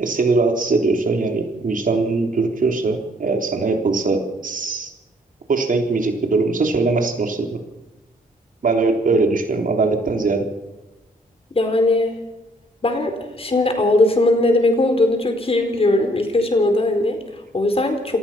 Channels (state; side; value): normal; both; correlation 0.63